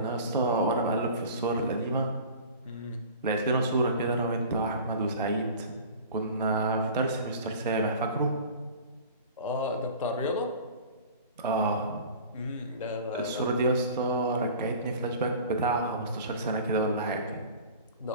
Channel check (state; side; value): inverted; both; correlation -0.41